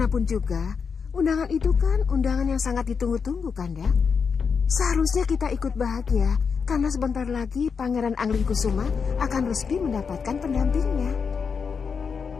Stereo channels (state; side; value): quieter; right; 5.9 dB